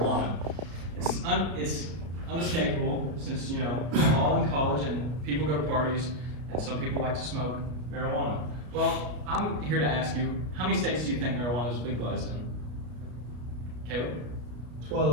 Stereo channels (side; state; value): left; late; 33 ms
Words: It's unescapable since, we're all in college and people go to parties and some people like to smoke marijuana. Well, I'm here to ask you, how many states do you think marijuana is legalized in? Caleb?